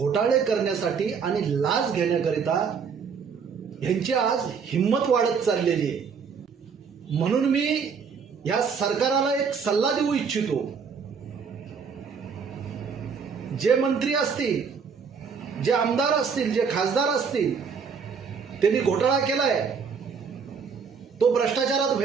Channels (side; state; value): left; quieter; 6.0 dB